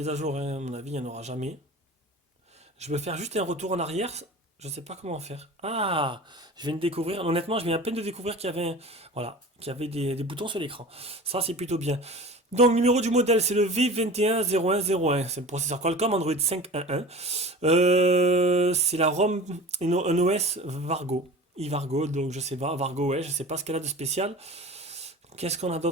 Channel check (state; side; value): normal; both; correlation 0.37